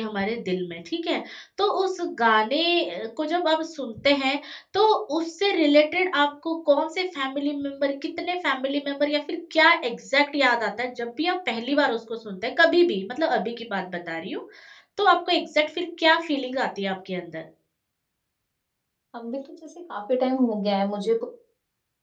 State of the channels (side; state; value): both; identical; correlation 1.00